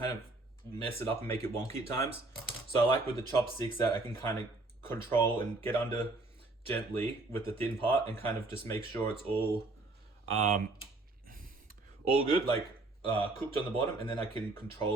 of mess it up and make it wonky at times. So I like with the chopsticks that I can kind of control and get under gently with the thin part and kind of just make sure it's all good, like cooked on the bottom, and then I can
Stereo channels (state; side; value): quieter; left; 3.1 dB